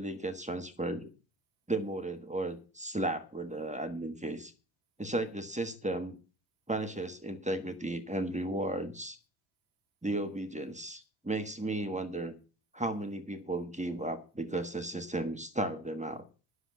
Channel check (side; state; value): both; normal; correlation 0.46